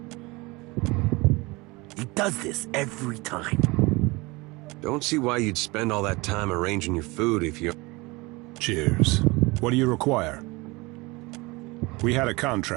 He does this every time. Don't see why you'd spend all that time arranging your food if you... Cheers. What do you require? We had a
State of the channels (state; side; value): quieter; left; 24.2 dB